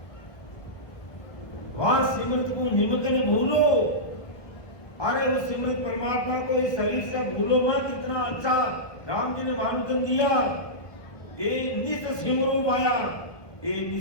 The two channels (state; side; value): late; right; 1.2 ms